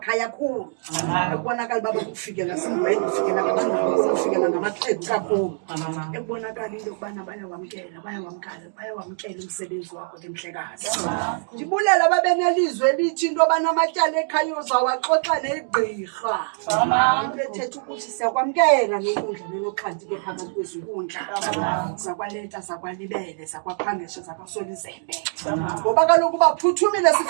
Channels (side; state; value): left; silent; digital silence